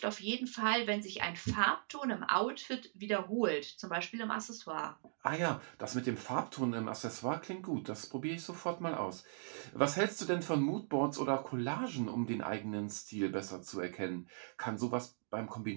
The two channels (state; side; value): silent; left; digital silence